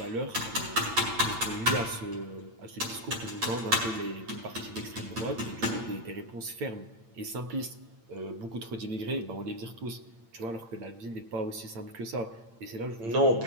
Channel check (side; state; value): left; late; 8.8 ms